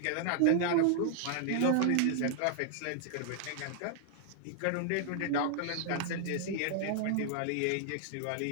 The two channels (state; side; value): different; both; correlation -0.01